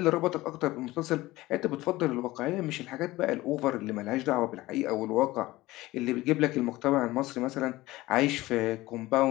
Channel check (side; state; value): right; quieter; 18.5 dB